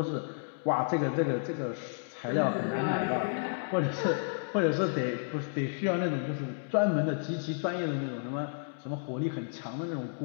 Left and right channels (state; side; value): silent; right; digital silence